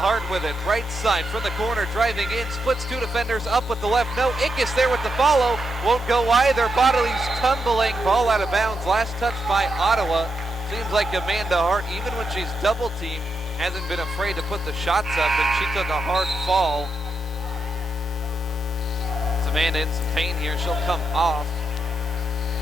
Hart with it, right side from the corner, driving in, splits two defenders, up with the left. No, Ickes there with the follow, won't go either. Bodiley's tumbling, ball out of bounds. Last touch by Ottawa. Seems like Amanda Hart, even when she's double teamed, hasn't been afraid to put the shots up, and she took a hard fall. It's Amanda in some pain here. She'll come off.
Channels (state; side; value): normal; both; correlation 0.84